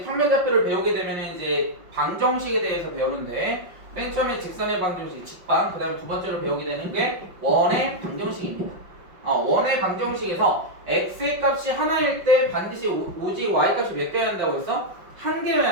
평면좌표를 배우게 되면 이제 방정식에 대해서 배우는데 맨 처음에 직선의 방정식, 직방, 그 다음에 두 번째로 배우게 되는 게 원의 방정식입니다. 원의 방정식에서 x의 값이 하나일 때 반드시 오직 y 값이 몇 개여야 한다고 했어? 한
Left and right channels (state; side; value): late; left; 5.6 ms